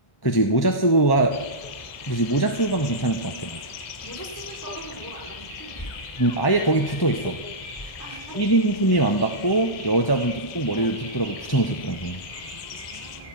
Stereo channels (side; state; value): right; late; 1.1 ms